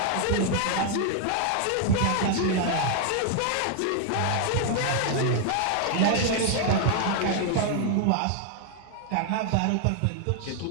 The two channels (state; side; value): different; both; correlation 0.00